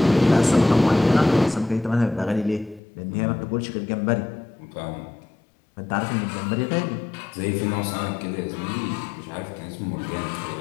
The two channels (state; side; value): drops out; right; at 2.8 s